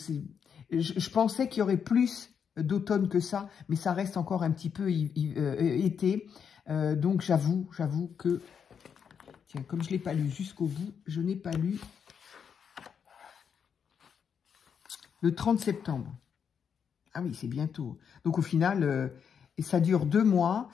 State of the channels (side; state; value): right; quieter; 7.2 dB